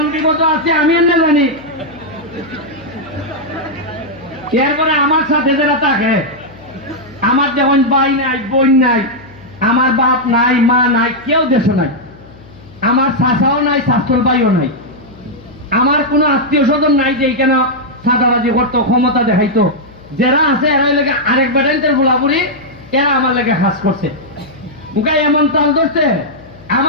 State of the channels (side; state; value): left; noise; hum, 23 dB below the sound